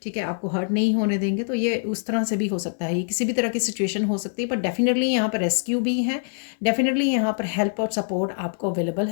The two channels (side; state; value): right; silent; digital silence